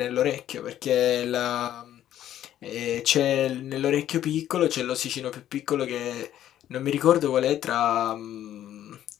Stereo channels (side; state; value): right; quieter; 11.8 dB